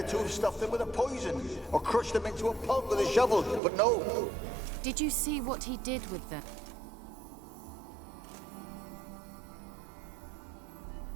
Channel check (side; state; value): left; drops out; at 3.6 s